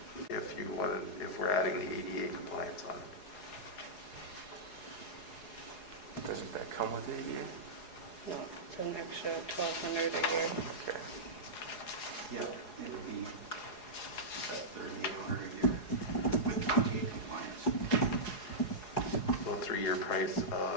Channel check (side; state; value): right; late; 4.8 ms